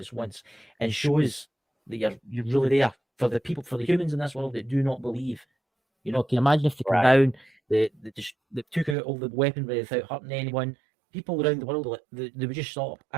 once and show us that you're really there for the people, for the humans in this world that do not believe. Can you imagine if they come down, they took out all the weaponry without hurting anyone? People around the world, they would just stop.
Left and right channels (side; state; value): left; drops out; at 9.0 s